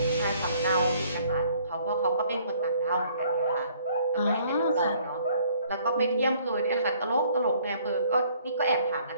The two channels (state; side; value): inverted; both; correlation -0.60